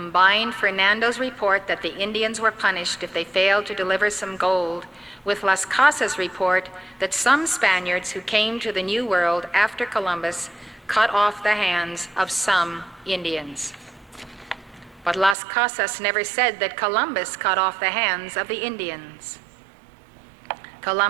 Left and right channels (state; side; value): drops out; left; at 15.4 s